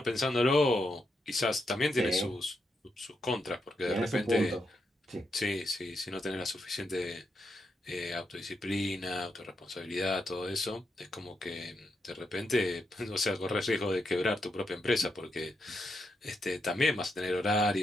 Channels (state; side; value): normal; both; correlation 0.82